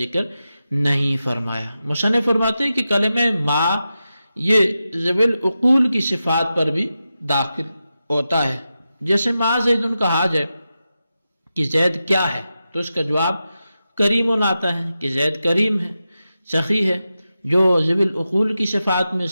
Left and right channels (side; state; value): both; inverted; correlation -0.91